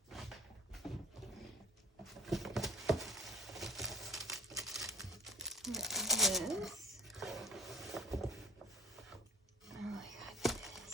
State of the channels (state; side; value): normal; both; correlation 0.43